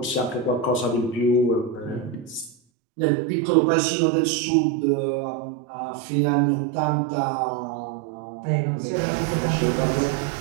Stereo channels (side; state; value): left; drops out; at 2.6 s